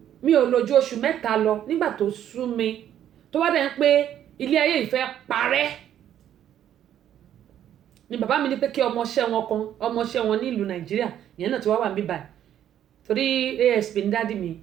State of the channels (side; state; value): left; quieter; 10.7 dB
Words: mi ò lò ju oṣù 3 lọ nígbà tó sú mi tó wá dẹ̀ ń pé ilé ayé ìfẹ́ parẹ́ ni bàbá mi ní pé kí ọmọọṣẹ́ wọn ní ìlú Nàìjíríà ìyẹn náà ti wá wà mí báyìí torí ASP ní dádì mi